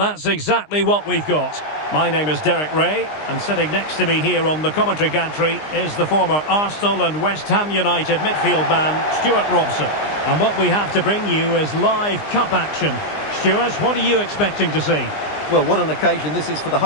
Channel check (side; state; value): right; late; 20 ms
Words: that's exactly what we've got. My name is Derek Ray, and sitting next to me here on the commentary gantry is the former Arsenal and West Ham United midfield man, Stuart Robson. And what we have to bring you is live cup action. Stuart, what are you expecting to see? Well, what an occasion this is for the